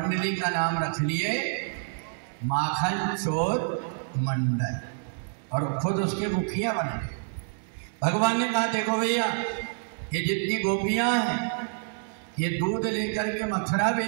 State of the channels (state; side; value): silent; left; digital silence